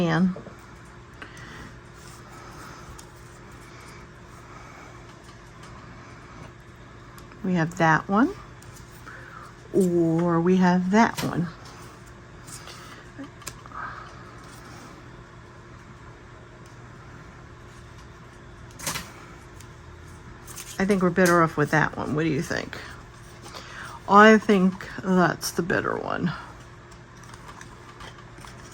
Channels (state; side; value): identical; both; correlation 1.00